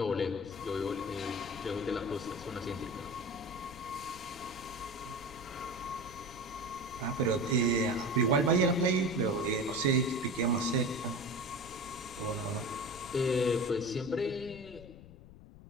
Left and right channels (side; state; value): left; noise; rumble, 18 dB below the sound